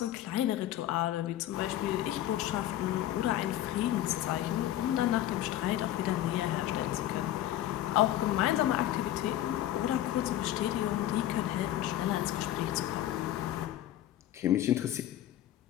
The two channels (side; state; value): right; quieter; 13.1 dB